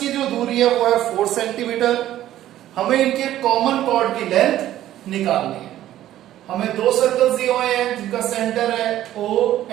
जो दूरी है वो है 4 सेंटीमीटर। हमें इनके कॉमन कॉर्ड की लेंथ निकालनी है। हमें दो सर्कल्स दिए हुए हैं जिनका सेंटर है O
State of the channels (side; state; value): left; quieter; 13.1 dB